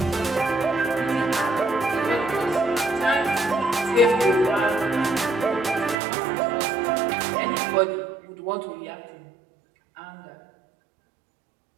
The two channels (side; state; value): left; drops out; at 6.0 s